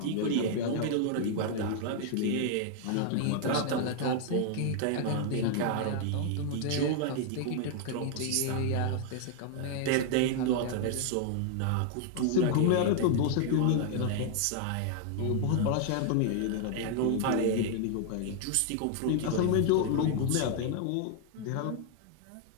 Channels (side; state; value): both; different; correlation 0.00